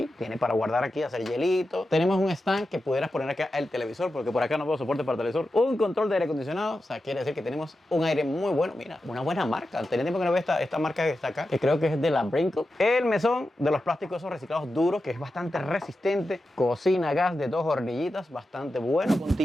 tiene para guardar aquí, hacer hielito. Tenemos un stand que pudieras poner acá el televisor, porque por acá no veo soporte para televisor. Un control de aire acondicionado, o sea, quiere decir que tenemos un aire muy bueno, mira, una buena marca. Tenía tiempo que no veo esta marca que está acá, que creo que es de la Brinkle. El mesón de los plásticos esos reciclados duros, que es bastante resistente. Cocina gas de 2 hornillitas, bastante bueno.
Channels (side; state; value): both; normal; correlation 0.91